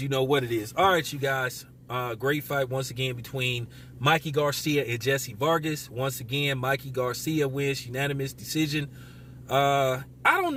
You know what it is. All right, you guys. Great fight once again between Mikey Garcia and Jesse Vargas. Once again, Mikey Garcia wins unanimous decision. I don't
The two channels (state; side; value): identical; both; correlation 1.00